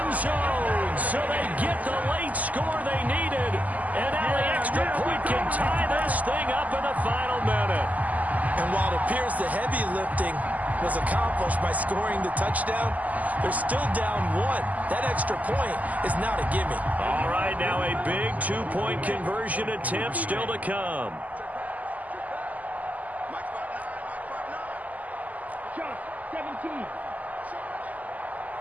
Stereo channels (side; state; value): left; late; 0.077 ms